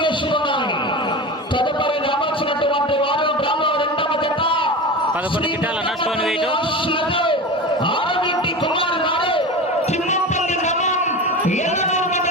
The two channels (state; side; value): normal; both; correlation 0.28